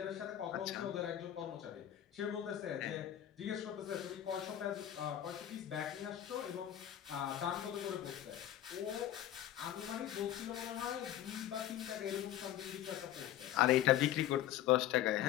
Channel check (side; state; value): right; quieter; 11.9 dB